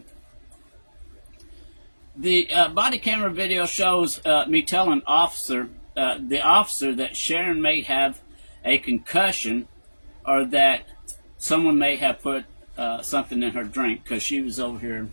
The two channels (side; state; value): both; inverted; correlation -1.00